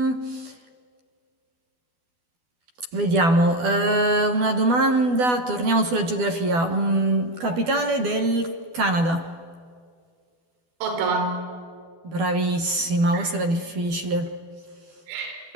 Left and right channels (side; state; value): left; late; 12 ms